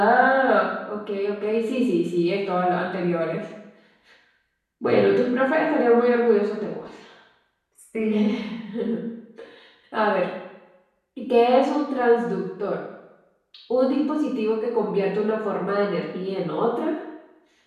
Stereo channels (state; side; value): identical; both; correlation 1.00